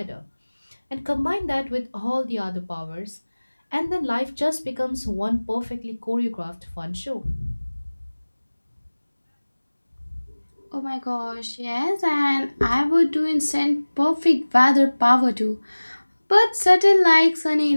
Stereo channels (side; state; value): both; inverted; correlation -1.00